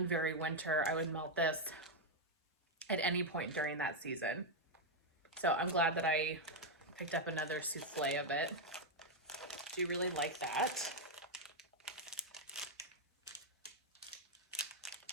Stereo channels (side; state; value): both; normal; correlation 0.00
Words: very winter. I would melt this at any point during that season. So I'm glad that I picked up another souffle of it. Do you really like that?